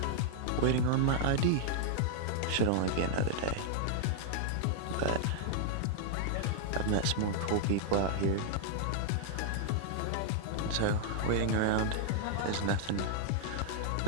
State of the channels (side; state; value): both; different; correlation -0.01